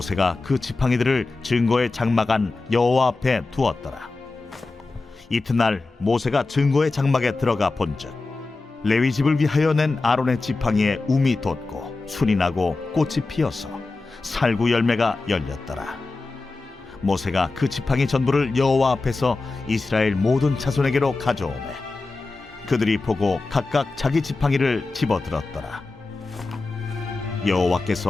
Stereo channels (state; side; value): quieter; right; 3.6 dB